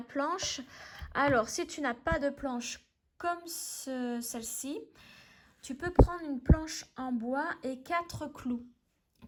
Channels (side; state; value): both; identical; correlation 1.00